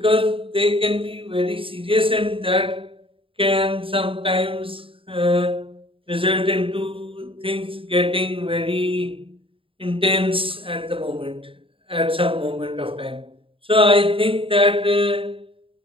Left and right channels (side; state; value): left; late; 0.26 ms